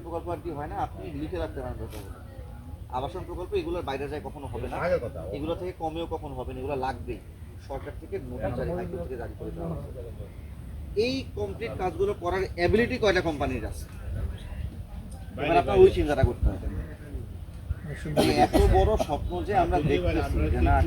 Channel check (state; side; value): identical; both; correlation 1.00